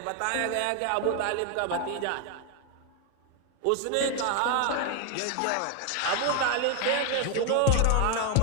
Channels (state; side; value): different; both; correlation 0.01